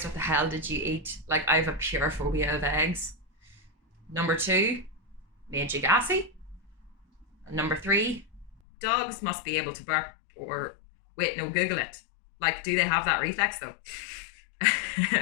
what the hell did you eat? Like, I have a pure phobia of eggs. Number 2, made you gassy. And number 3, dogs must be able to bark or wait, no, Google it. Like, do they have that reflex though?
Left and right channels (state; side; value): drops out; right; at 8.6 s